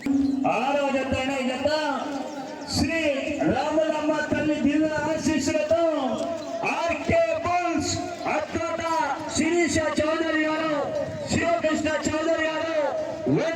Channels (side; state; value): both; identical; correlation 1.00